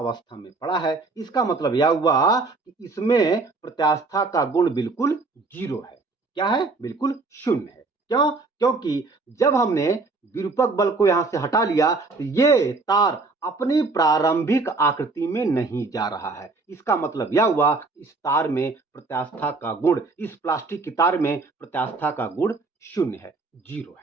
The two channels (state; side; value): quieter; left; 3.7 dB